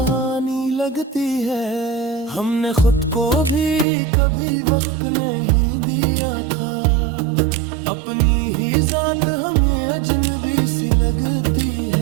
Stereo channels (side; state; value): left; drops out; at 3.9 s